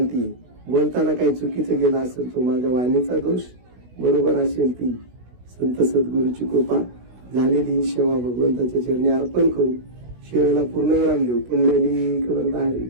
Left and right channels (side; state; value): left; late; 16 ms